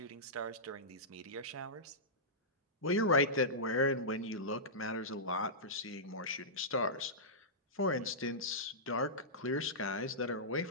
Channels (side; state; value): both; normal; correlation -0.16